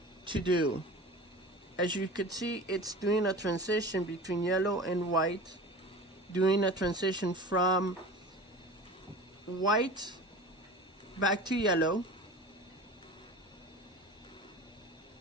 to do. As you could see, it's doing a transition between yellow and white, doing a transition from white back to yellow,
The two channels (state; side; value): normal; both; correlation 0.36